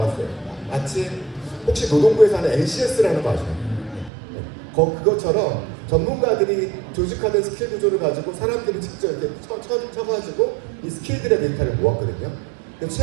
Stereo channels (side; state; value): left; drops out; at 4.1 s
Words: 마치 혹시 노동부에서 하는 NCS라는 거 아시나요? 그것처럼 전문가들이 조직화된 스킬 구조를 가지고 사람들이 직접 이렇게 쳐가지고 이 스킬들의 데이터를 모았거든요.